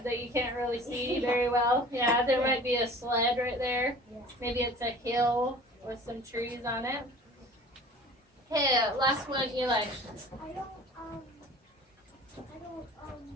that you can't really see very well. Yeah, there might be a sled right there. Yeah. Maybe it's a hill with some trees on it. Okay, last one, Eli. I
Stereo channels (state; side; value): normal; both; correlation 0.44